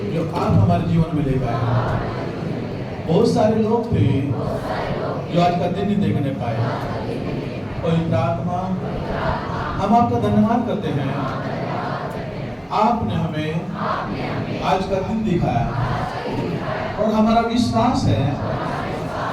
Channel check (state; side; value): identical; both; correlation 1.00